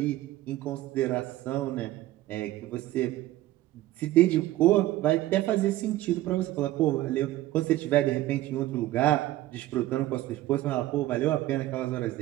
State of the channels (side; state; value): left; quieter; 15.7 dB